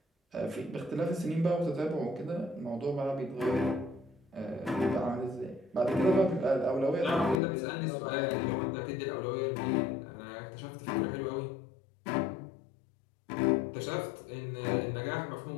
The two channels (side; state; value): right; drops out; at 7.4 s